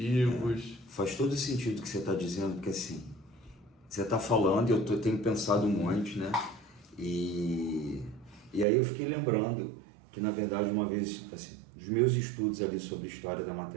Faz todo sentido o que você está dizendo, porque assim, você está falando e eu tenho pensado um monte, né? E aí eu fiquei lembrando que, na verdade, uma vez, assim, os meus estudos ali sobre história da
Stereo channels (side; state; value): left; drops out; at 8.7 s